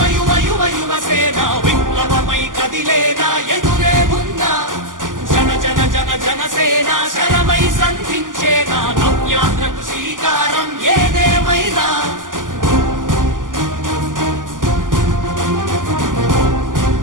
యువ యువ యువసేన విప్లవమై కదిలేనా ఎదురే ఉందా జన జన జన జనసేన శరమై సంధించేనా నవ్యాంధ్రకు శ్రీకారం ఏదేమైనా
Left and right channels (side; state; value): left; late; 0.88 ms